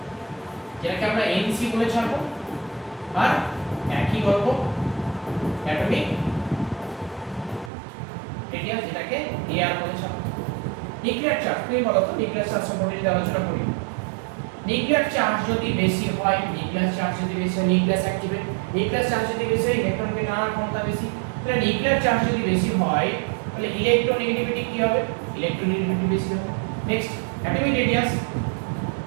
যেটাকে আমরা NC বলে ছাড়বো, আর একই গল্প অ্যাটমিক রেডিয়াস, যেটাকে AR বলে ছাড়বো। নিউক্লিয়ার চার্জ, তুমি বলো তো নিউক্লিয়ার চার্জ সম্পর্কে যদি আলোচনা করি, নিউক্লিয়ার চার্জ যদি বেশি হয়, নিউক্লিয়ার চার্জ যদি বেশি হয় নিউক্লিয়াস অ্যাক্টিভেট, নিউক্লিয়ার চার্জ যদি বেশি হয় ইলেকট্রনকে টানার ক্ষমতা বেশি, তাহলে নিউক্লিয়ার চার্জ যদি বেশি হয় তাহলে ইলেকট্রোনেগেটিভিটি কি হবে? ইলেকট্রোনেগেটিভিটি বেশি হবে। Next atomic radius,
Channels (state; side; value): drops out; left; at 7.7 s